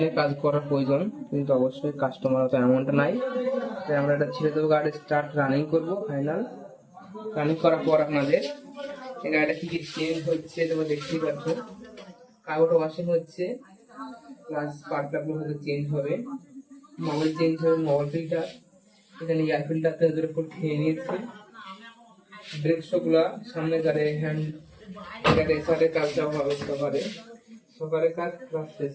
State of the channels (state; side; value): identical; both; correlation 1.00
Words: কাজ করার প্রয়োজন, কিন্তু অবশ্যই কাস্টমার অত এমনটা নাই। তাই আমরা এটা ছেড়ে দেবো, গাড়ি স্টার্ট রানিং করবো। ফাইনাল রানিং করার পর আপনাদের এই গাড়িটা কি কি চেঞ্জ হচ্ছে তোমরা দেখতেই পাচ্ছ। কাগজটা ওয়াশিং হচ্ছে, প্লাস স্পার্ক প্লাগগুলো হয়তো চেঞ্জ হবে, মোবাইল চেঞ্জ হবে, মোবাইল ফিল্টার, এখানে এয়ার ফিল্টারটা ওদের উপর খেয়ে নিয়েছে। ব্রেক শোগুলা সামনে গাড়ি হ্যান্ড রেসারের কাজটাও হবে, সকারের কাজ প্লাস